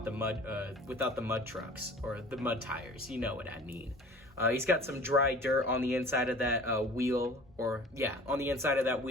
the mud trucks, or the mud tires. You know what I mean. He's got some dry dirt on the inside of that wheel, on the inside of that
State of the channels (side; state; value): both; normal; correlation 0.45